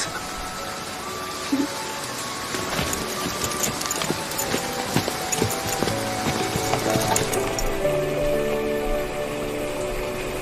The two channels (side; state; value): both; identical; correlation 1.00